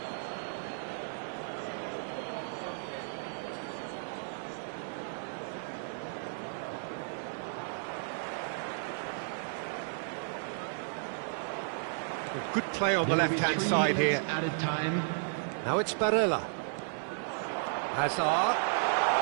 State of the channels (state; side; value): silent; left; 55 dB below the other